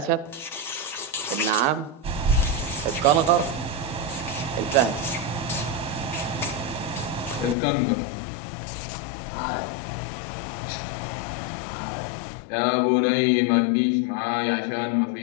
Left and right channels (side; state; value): right; drops out; at 7.6 s